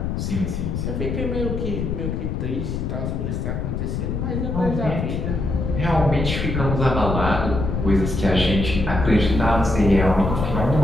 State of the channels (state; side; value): noise; left; rumble, 2 dB below the sound